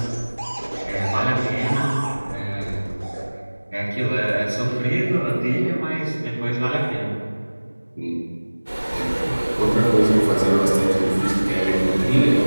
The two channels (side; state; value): both; inverted; correlation -1.00